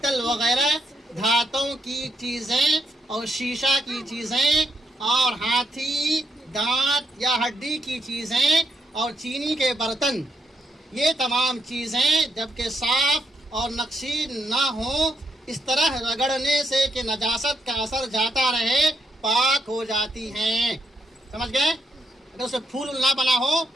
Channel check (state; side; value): normal; both; correlation 0.79